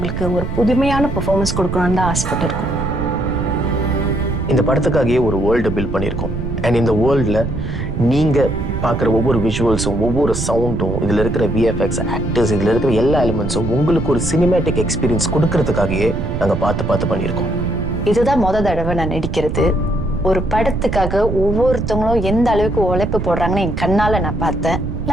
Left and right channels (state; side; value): noise; right; rumble, 4 dB below the sound